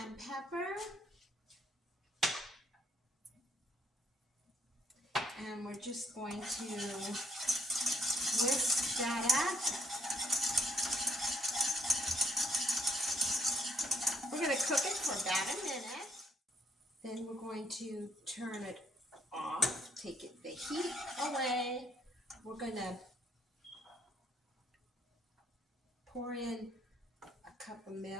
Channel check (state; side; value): normal; both; correlation 0.70